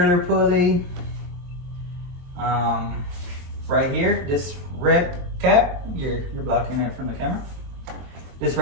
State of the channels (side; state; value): left; late; 23 ms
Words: pulley. Right here, this red cap, you're blocking it from the camera. This